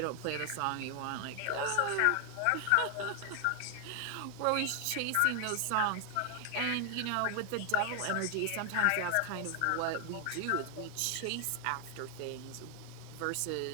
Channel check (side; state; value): both; different; correlation 0.00